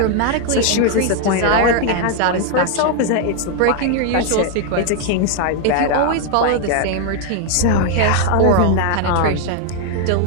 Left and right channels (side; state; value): both; different; correlation 0.00